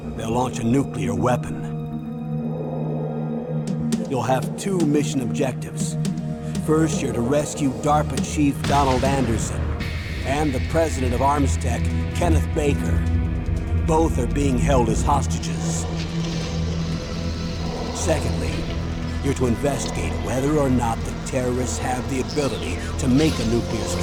they'll launch a nuclear weapon. You'll have two mission objectives. First, you're to rescue DARPA Chief Donald Anderson and the president of Armstech, Kenneth Baker. Both are being held as hostages. Secondly, you're to investigate whether or not the terrorists have the ability to make a nuclear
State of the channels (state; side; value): identical; both; correlation 1.00